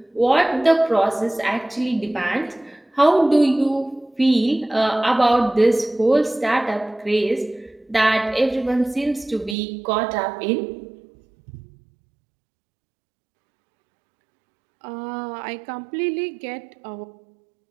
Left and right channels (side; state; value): left; drops out; at 9.6 s